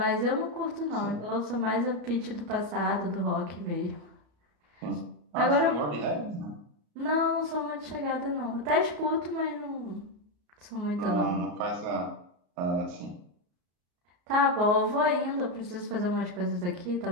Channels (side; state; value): left; late; 33 ms